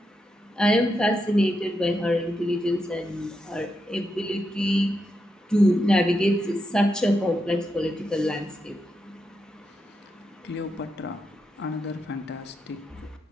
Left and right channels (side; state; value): both; normal; correlation 0.84